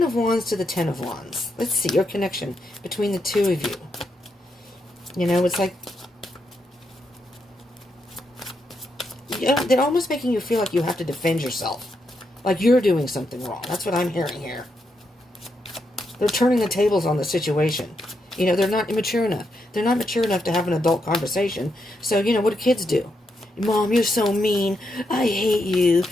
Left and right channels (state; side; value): normal; both; correlation 0.82